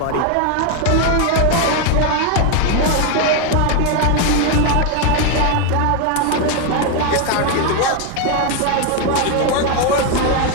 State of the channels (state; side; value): different; both; correlation 0.01